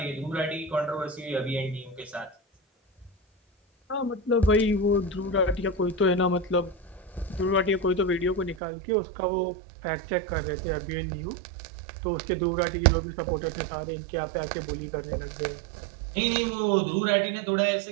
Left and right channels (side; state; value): left; drops out; at 8.6 s